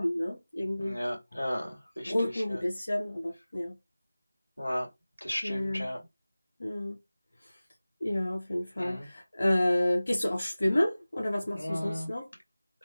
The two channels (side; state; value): both; inverted; correlation -0.98